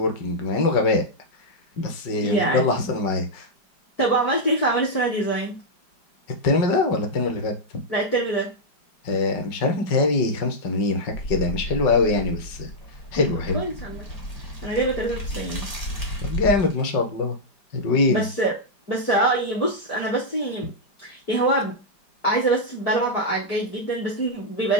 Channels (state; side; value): late; right; 5.0 ms